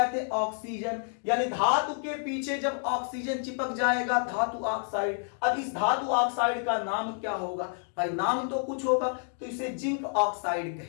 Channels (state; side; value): silent; right; 58 dB below the other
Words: थे ऑक्सीजन, यानी धातु के पीछे जब ऑक्सीजन चिपक जाएगा धातु ऑक्साइड। अब इस धातु ऑक्साइड का नाम क्या होगा? भाई नाम तो कुछ होगा, तो इसे जिंक ऑक्साइड